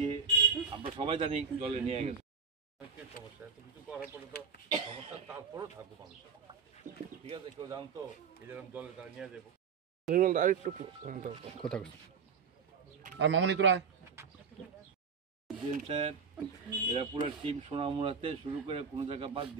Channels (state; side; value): quieter; left; 5.9 dB